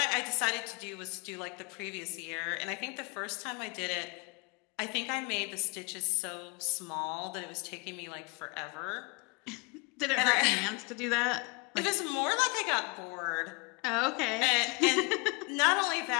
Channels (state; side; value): quieter; right; 31.2 dB